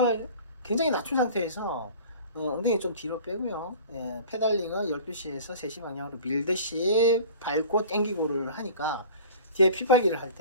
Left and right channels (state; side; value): inverted; both; correlation -0.43